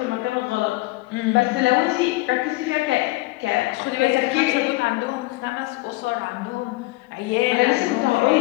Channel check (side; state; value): right; quieter; 20.8 dB